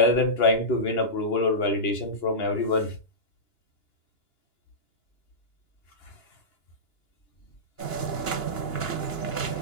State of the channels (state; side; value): late; right; 2.9 ms